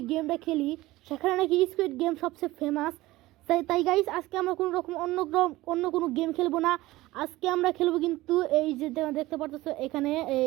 গেমটা খেলি, সেখানে নাকি স্কুইড গেম সবচেয়ে ফেমাস। তাই গাইস আজকে আমরা কোনো রকম অন্য কোনো গেম খেলবো না। আজকে আমরা খেলবো কিন্তু এই যে দেখতে পারতেছো এখানে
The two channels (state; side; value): quieter; left; 18.2 dB